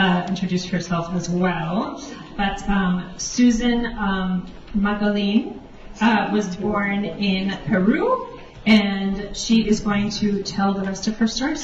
introduce herself as well. But Susan Magaline was born in Peru, and she is going to tell the rest of her story.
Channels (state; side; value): identical; both; correlation 1.00